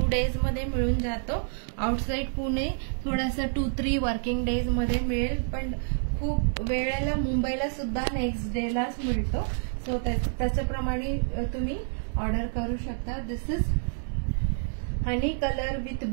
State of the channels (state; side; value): silent; left; digital silence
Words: डेज मध्ये मिळून जातो. आउटसाइड पुणे थोडासा 2-3 वर्किंग डेज मध्ये मिळेल पण खूप वेळेला मुंबईला सुद्धा नेक्स्ट डेलाच मिळतो. सो त्याच्याप्रमाणे तुम्ही ऑर्डर करू शकता. This is honey colour with